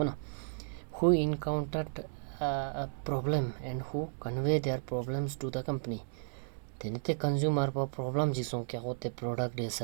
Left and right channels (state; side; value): silent; left; digital silence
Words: who encountered a problem and who convey their problems to the company. Then the consumer problem jisong kya hote product या